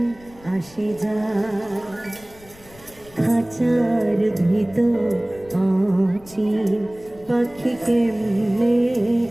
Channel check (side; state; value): left; noise; rumble, 24 dB below the sound